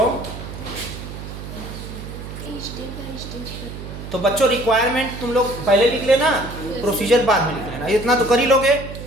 तो बच्चों रिक्वायरमेंट तुम लोग पहले लिख लेना, प्रोसीजर बाद में लिख लेना, इतना तो कर ही लोगे।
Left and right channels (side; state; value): right; noise; hum, 10 dB below the sound